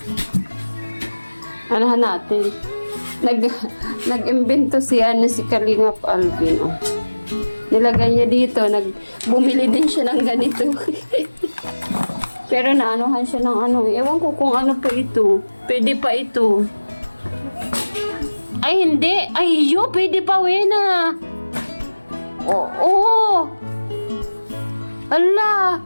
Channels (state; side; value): inverted; both; correlation -1.00